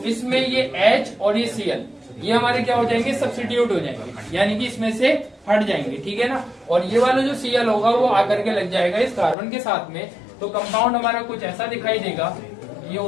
इसमें ये H और ये Cl, ये हमारे क्या हो जाएंगे? सब्स्टिट्यूट हो जाएंगे, यानी कि इसमें से हट जाएंगे। ठीक है ना, और ये वाला जो Cl होगा वो आकर के लग जाएगा इस कार्बन के साथ में, तो कंपाउंड हमारा कुछ ऐसा दिखाई देगा। ये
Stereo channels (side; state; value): right; drops out; at 9.3 s